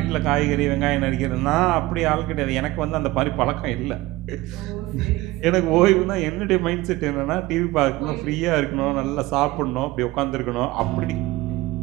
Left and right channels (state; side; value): quieter; left; 18.5 dB